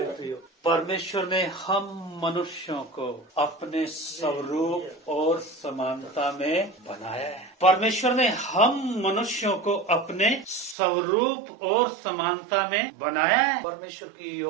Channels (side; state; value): left; drops out; at 10.8 s